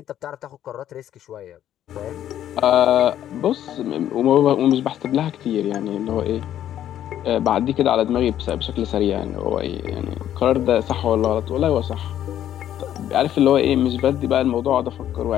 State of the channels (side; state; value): right; quieter; 11.2 dB